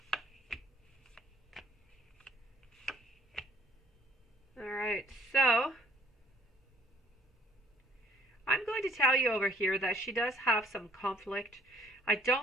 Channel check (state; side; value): normal; both; correlation 0.60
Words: All right, so I'm going to tell you over here that she does have some conflict. I